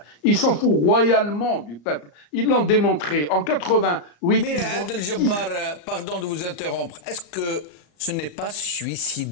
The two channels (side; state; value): right; late; 34 ms